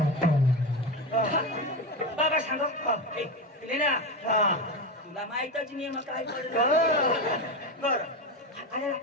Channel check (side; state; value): both; normal; correlation 0.17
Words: बाबा सांगा पिले ना तुला माहितच नाही मग काय पडलं बर